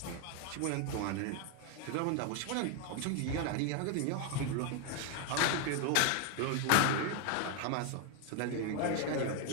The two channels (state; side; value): different; both; correlation 0.01